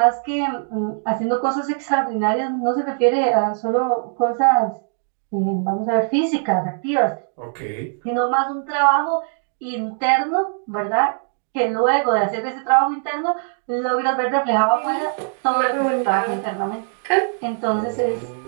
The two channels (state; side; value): silent; left; digital silence